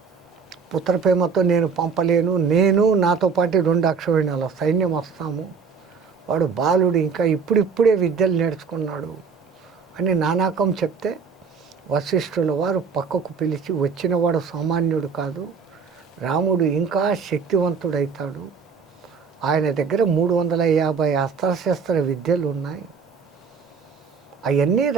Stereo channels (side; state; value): left; quieter; 5.7 dB